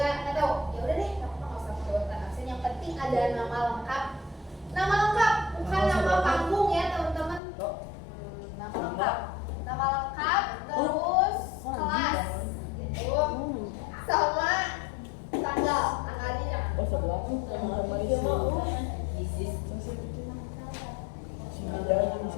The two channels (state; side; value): drops out; right; at 7.4 s